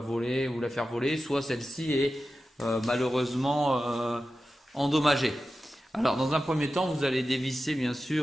ou la faire voler, soit celle-ci est malheureusement endommagée. Alors, dans un premier temps, vous allez dévisser bien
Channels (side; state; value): both; normal; correlation 0.93